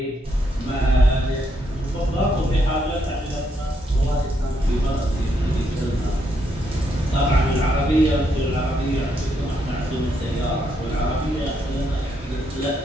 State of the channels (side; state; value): both; normal; correlation 0.76